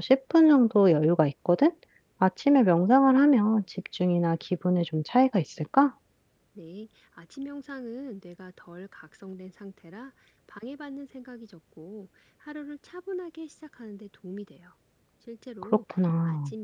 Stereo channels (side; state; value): both; identical; correlation 1.00